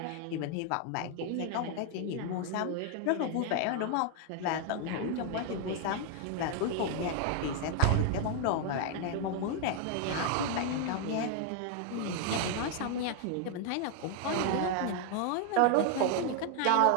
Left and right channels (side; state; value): both; different; correlation 0.00